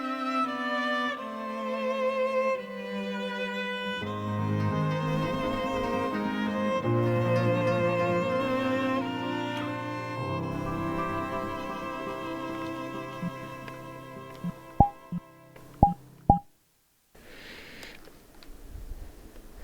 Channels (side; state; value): both; identical; correlation 1.00